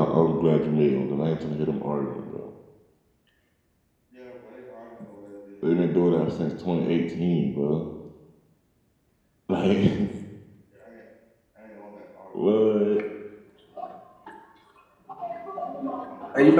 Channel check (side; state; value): both; identical; correlation 1.00